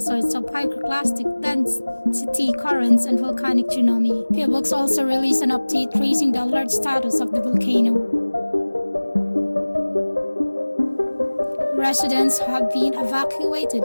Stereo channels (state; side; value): inverted; both; correlation -1.00